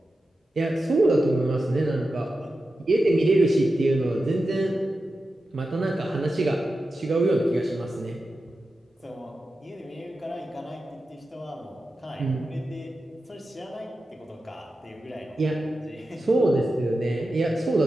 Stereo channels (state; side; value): normal; both; correlation 0.91